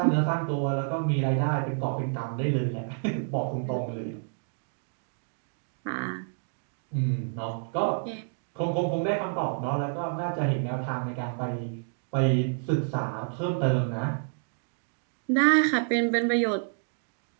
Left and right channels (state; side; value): silent; left; 59 dB below the other